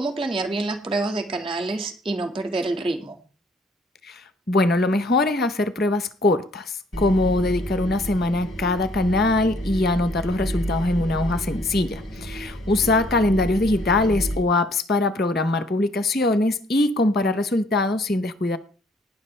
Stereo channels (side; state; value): both; normal; correlation 0.62